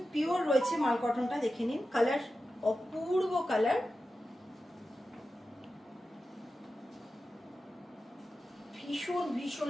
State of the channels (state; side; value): normal; both; correlation 0.92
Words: পিওর রয়েছে মাল কটনটা, দেখে নিন। কালার অপূর্ব কালার, ভীষণ ভীষণ